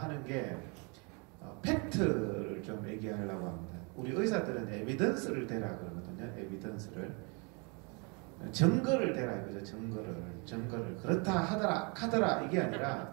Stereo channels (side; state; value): left; quieter; 32.7 dB